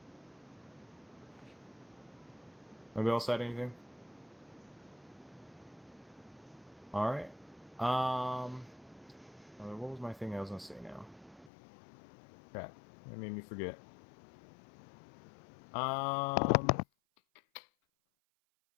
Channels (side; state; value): right; drops out; at 11.5 s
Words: Nobody else had anything? Alright. What was my thing I was gonna say now? Crap. That made me forget. Yeah,